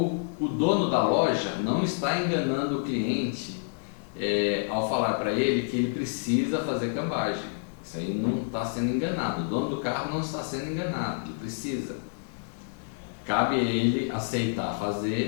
dono da loja não está enganando o cliente ao falar para ele que ele precisa fazer cambagem. Isso aí não está sendo enganado. O dono do carro não está sendo enganado, ele precisa. Cabe a ele aceitar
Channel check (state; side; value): silent; right; 59 dB below the other